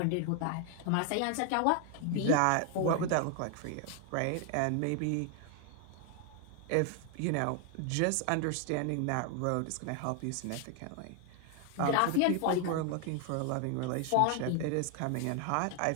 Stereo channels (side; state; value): both; different; correlation 0.00